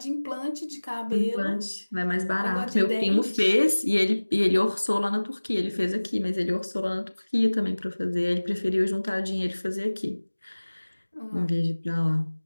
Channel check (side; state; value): both; inverted; correlation -1.00